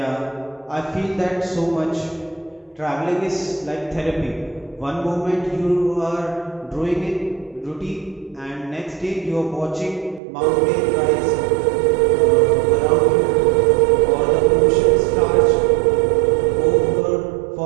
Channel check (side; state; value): left; drops out; at 10.2 s